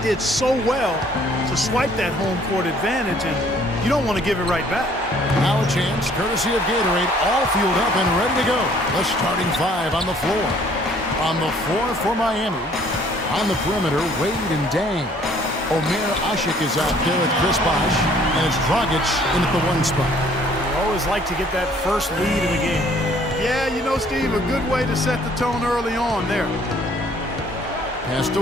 did so well to swipe that home court advantage, and you don't want to give it right back. Now a chance, courtesy of Gatorade, all fueled up and ready to go. The starting five on the floor. On the floor for Miami. On the perimeter, Wade and Dang. Omer Asik is out there with Chris Bosh, and it's Dragic in at the 1 spot. You always like to get that first lead in the game. Yeah, you know, Steve, a good way to set the tone early on there. Passed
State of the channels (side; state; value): both; normal; correlation 0.59